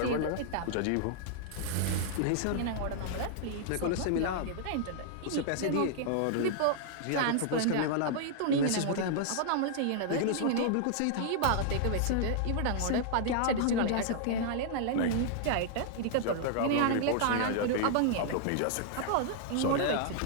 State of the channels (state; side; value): different; both; correlation -0.01